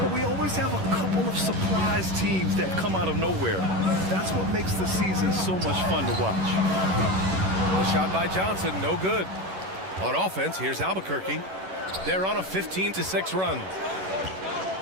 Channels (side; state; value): left; late; 11 ms